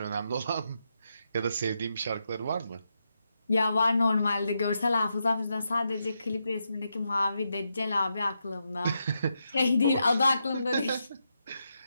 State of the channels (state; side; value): inverted; both; correlation -0.84